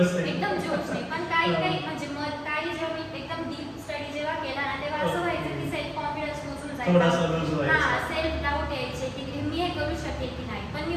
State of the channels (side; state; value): both; identical; correlation 1.00